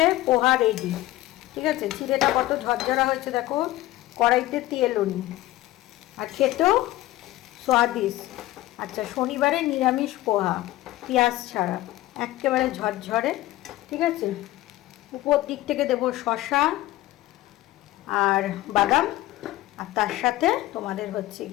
পোহা রেডি। ঠিক আছে, চিড়েটা কত ঝরঝরা হয়েছে দেখো, কড়াইতে তেলও নি, আর খেতেও স্বাদিষ্ট। আচ্ছা, শনিবারে নিরামিষ পোহা, পেঁয়াজ ছাড়া, একেবারে ঝরঝরে। ঠিক আছে, উপর দিক থেকে দেবো শসা আর বাদাম, আর তার সাথে তোমাদের হচ্ছে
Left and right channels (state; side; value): quieter; right; 16.5 dB